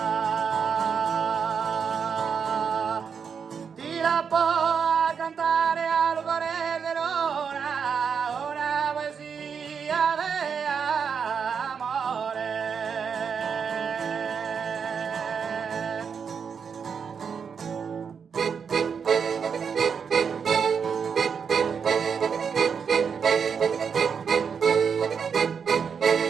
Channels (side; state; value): left; quieter; 6.5 dB